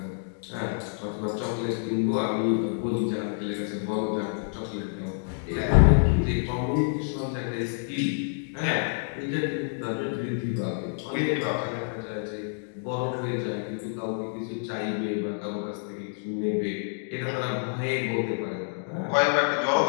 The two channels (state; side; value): silent; right; digital silence